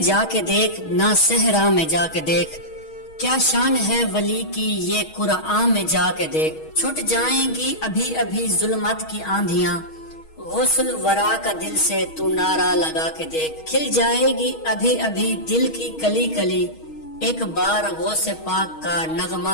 کے دیکھ، نہ صحرا میں جا کے دیکھ، کیا شان ہے ولی کی یہ قرآن میں جا کے دیکھ۔ چھٹ جائیں گی ابھی ابھی ظلمت کی آندھیاں، غسل ورا کا دل سے تو نعرہ لگا کے دیکھ۔ کھل جائے گی ابھی ابھی دل کی کلی کلی، ایک بار غوث پاک کا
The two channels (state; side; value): late; right; 6.3 ms